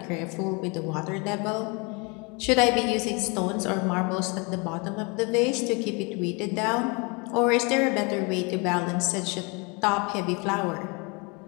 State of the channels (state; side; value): quieter; right; 30.2 dB